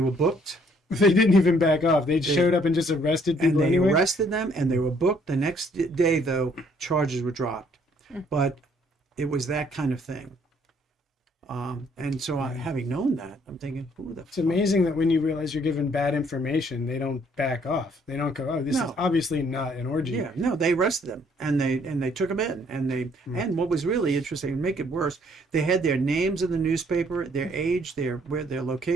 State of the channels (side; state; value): both; normal; correlation 0.64